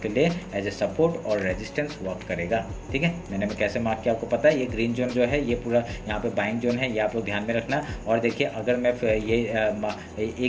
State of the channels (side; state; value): both; identical; correlation 1.00